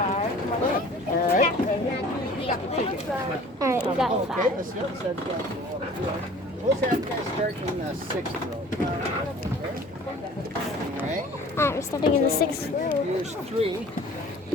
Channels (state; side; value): normal; both; correlation 0.47